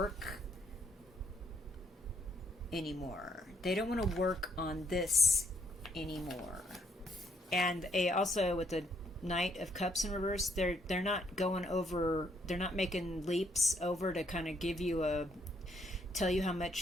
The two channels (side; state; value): both; normal; correlation 0.71